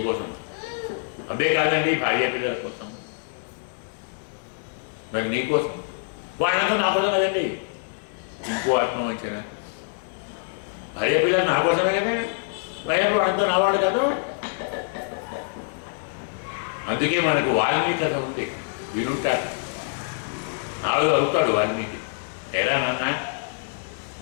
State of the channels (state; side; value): silent; right; digital silence